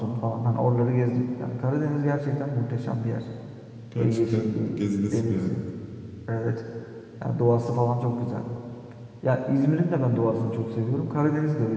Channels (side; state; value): both; identical; correlation 1.00